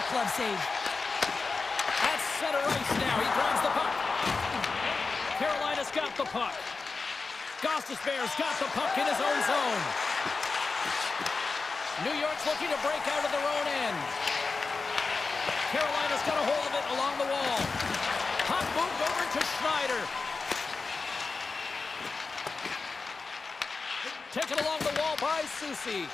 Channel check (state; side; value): quieter; right; 4.2 dB